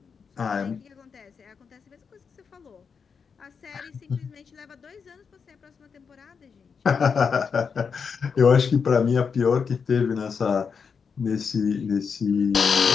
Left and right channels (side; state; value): right; quieter; 6.0 dB